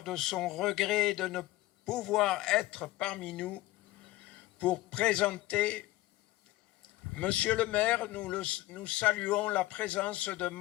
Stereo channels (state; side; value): quieter; right; 17.4 dB